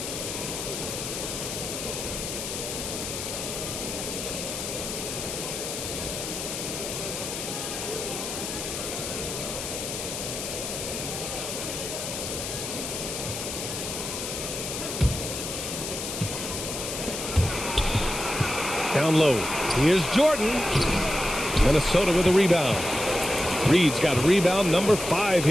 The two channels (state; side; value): noise; left; hiss, 5 dB below the sound